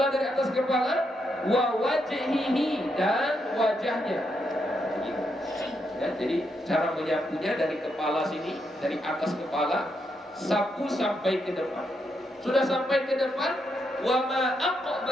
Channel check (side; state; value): both; normal; correlation 0.80